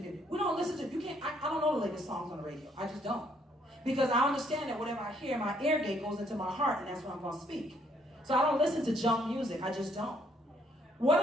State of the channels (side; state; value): both; normal; correlation 0.68